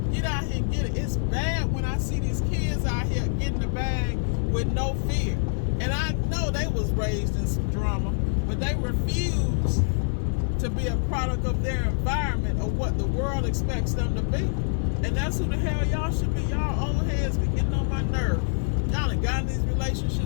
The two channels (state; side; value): silent; right; digital silence